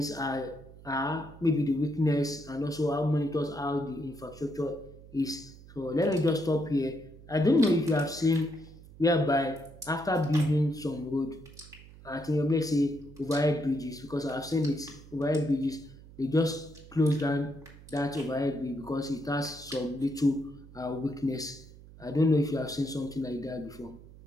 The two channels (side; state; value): right; noise; hum, 19 dB below the sound